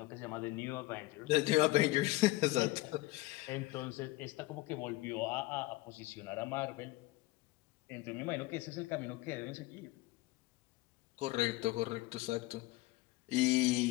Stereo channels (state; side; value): quieter; right; 19.6 dB